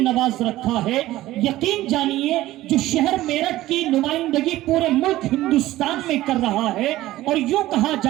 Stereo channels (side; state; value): left; quieter; 15.9 dB